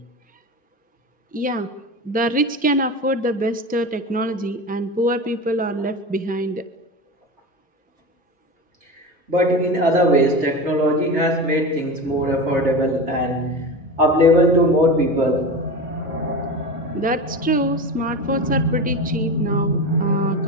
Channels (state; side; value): normal; both; correlation 0.26